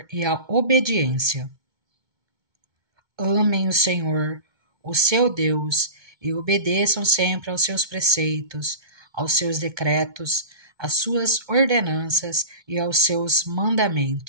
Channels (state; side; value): late; left; 2.2 ms